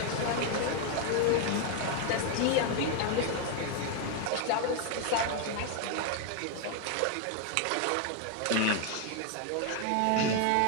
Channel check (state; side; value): different; both; correlation 0.01